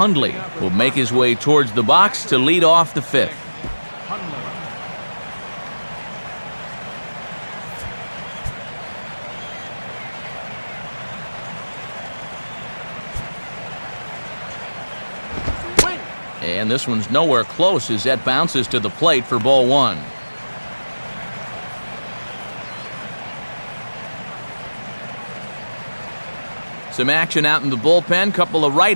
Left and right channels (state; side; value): inverted; both; correlation -1.00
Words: will make his way towards the box to lead off the 5th. And this one's nowhere close as that bounces to the plate for ball 1. Some action out in the bullpen. Couple of